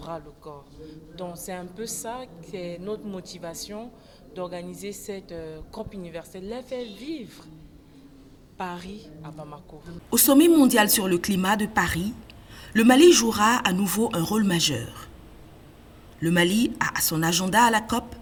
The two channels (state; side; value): identical; both; correlation 1.00